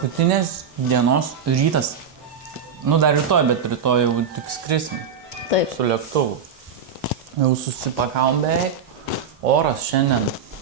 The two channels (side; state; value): left; quieter; 6.6 dB